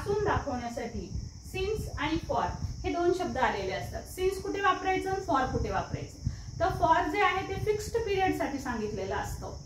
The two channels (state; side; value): identical; both; correlation 1.00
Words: दाखवण्यासाठी. सिन्स आणि फॉर हे दोन शब्द आलेले असतात. सिन्स कुठे वापरायचं, फॉर कुठे वापरायचं. तर फॉर जे आहे ते फिक्स्ड पिरियड साठी सांगितलेलं असतं.